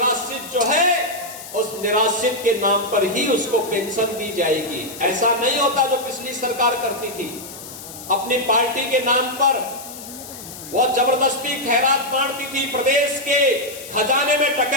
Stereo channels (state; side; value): noise; left; hiss, 13 dB below the sound